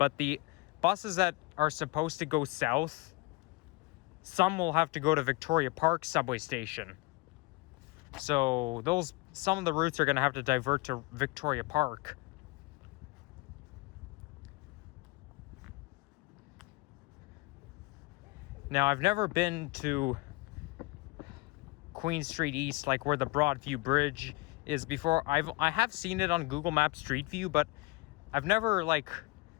the buses that are supposed to go south some will have to go to Victoria Park subway station. So some of the routes are going to have to divert to Victoria Park. Now, I've never been to Queen Street East, like where the Broadview Bridge is before. I have seen it on Google Maps Street View, but I've never like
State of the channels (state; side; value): quieter; right; 24.2 dB